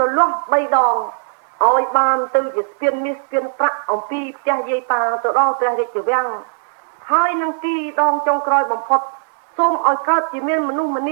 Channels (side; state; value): left; silent; digital silence